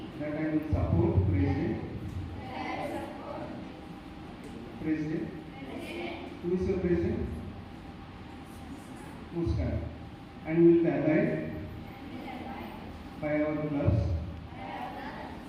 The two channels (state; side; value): identical; both; correlation 1.00